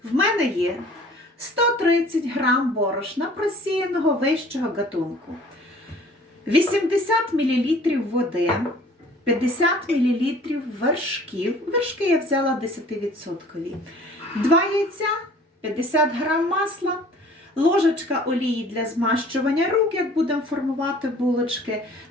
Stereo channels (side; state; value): both; normal; correlation 0.51